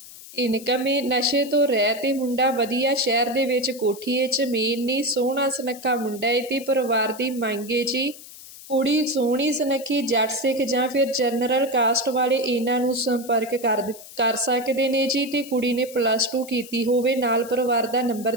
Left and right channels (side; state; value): left; noise; hiss, 17 dB below the sound